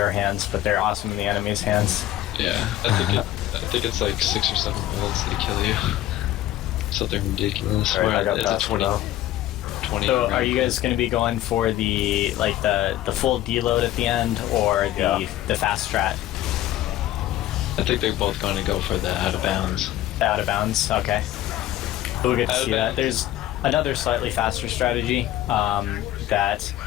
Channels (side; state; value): right; quieter; 13.9 dB